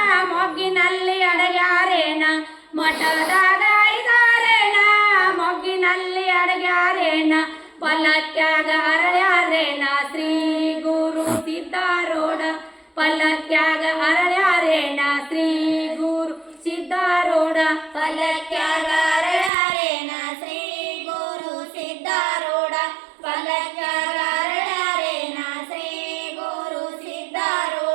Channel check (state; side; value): drops out; left; at 19.5 s